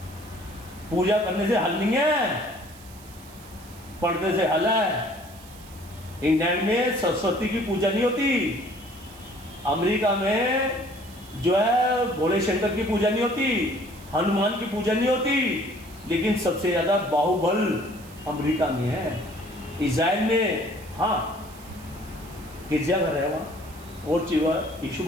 पूजा करने से हल नहीं है, पढ़ने से हल है। इंग्लैंड में सरस्वती की पूजा नहीं होती, अमेरिका में जो है भोले शंकर की पूजा नहीं होती, हनुमान की पूजा नहीं होती, लेकिन सबसे ज़्यादा बाहुबल अमेरिका में है। इज़राइल में हाँ गिरजाघर है वहाँ, और चीज़ यीशु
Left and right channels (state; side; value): noise; right; hiss, 21 dB below the sound